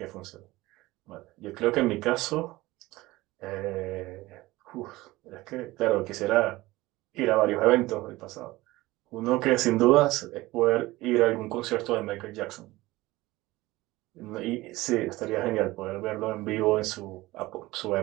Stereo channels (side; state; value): left; quieter; 19.1 dB